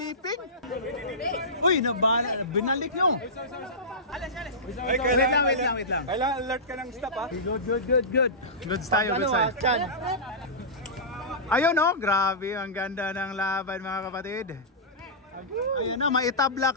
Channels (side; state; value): both; normal; correlation -0.18